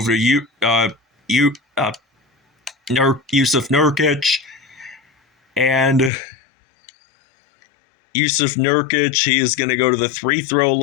to Yusuf Nurkic. And Yusuf Nurkic, he is going to go to the free-throw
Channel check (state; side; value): drops out; right; at 6.1 s